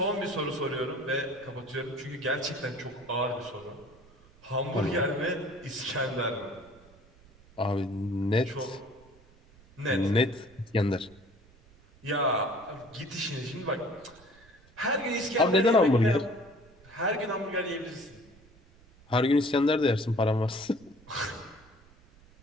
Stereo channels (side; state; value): right; noise; rumble, 27 dB below the sound